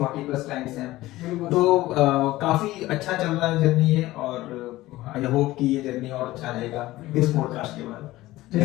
प्लस क्लाइंट्स हैं। तो काफी अच्छा चल रहा है जर्नी ये और आई होप कि ये जर्नी और अच्छा रहेगा इस पॉडकास्ट के बाद।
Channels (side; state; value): right; quieter; 17.2 dB